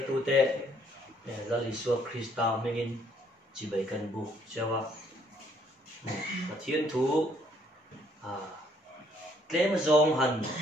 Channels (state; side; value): normal; both; correlation 0.65